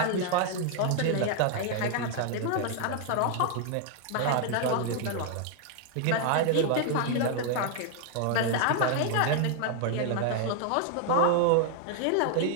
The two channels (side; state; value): both; different; correlation 0.00